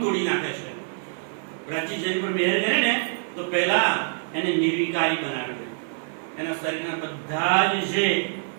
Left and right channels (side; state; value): left; silent; 56 dB below the other